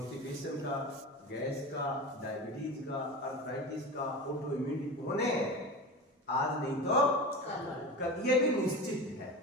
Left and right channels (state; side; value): normal; both; correlation 0.28